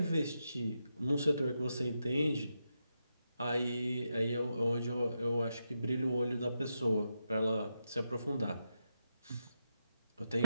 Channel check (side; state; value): both; inverted; correlation -0.86